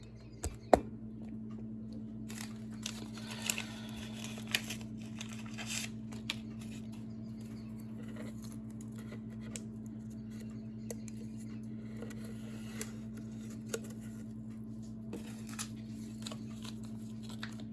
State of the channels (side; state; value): both; identical; correlation 1.00